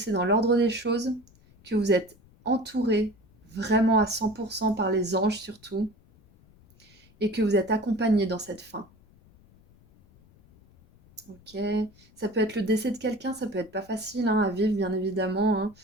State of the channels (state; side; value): noise; left; rumble, 28 dB below the sound